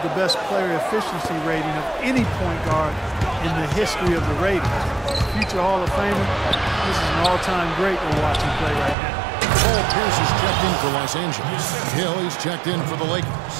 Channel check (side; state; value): left; drops out; at 9.0 s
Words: the best player efficiency rating of any point guard in the history of the ratings. Future Hall of Famer, this is an all-time great we're watching play right now. Paul Pierce is checked in for Los Angeles. Hill, he's checked in for the Lakers.